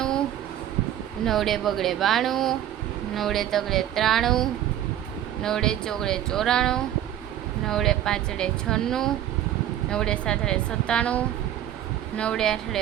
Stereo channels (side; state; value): left; quieter; 11.7 dB